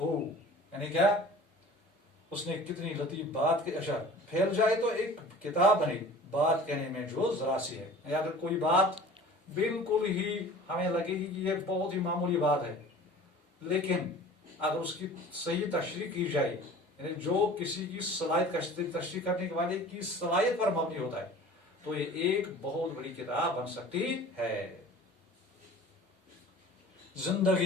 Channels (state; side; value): normal; both; correlation 0.43